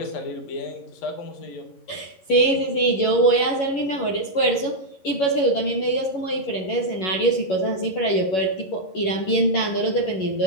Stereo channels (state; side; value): late; right; 11 ms